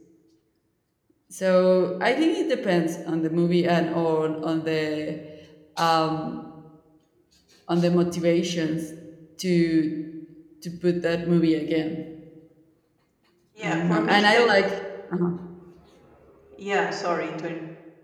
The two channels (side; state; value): both; identical; correlation 1.00